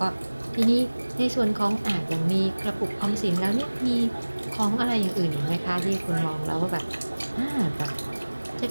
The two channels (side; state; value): both; inverted; correlation -1.00